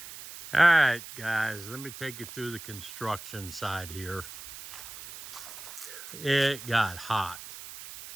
All right, guys, let me take you through the construction side here. It got hot.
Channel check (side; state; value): right; noise; hiss, 13 dB below the sound